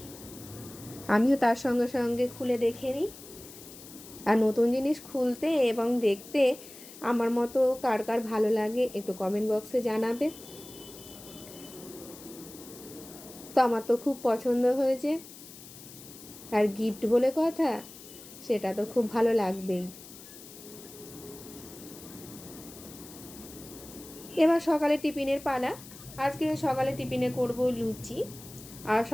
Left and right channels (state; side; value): noise; left; hiss, 17 dB below the sound